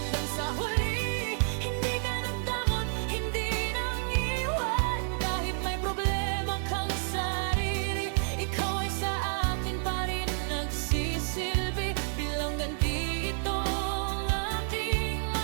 sa huli, hindi ka nagdamot, hindi nang iwan. Kahit may problema kang sarili, ikaw ay sa akin pa rin nagsisilbi. Bilang ganti ito ang aking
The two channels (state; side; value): silent; left; 58 dB below the other